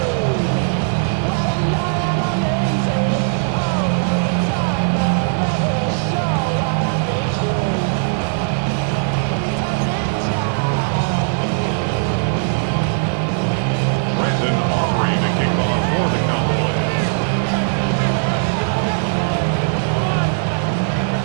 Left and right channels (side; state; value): left; silent; digital silence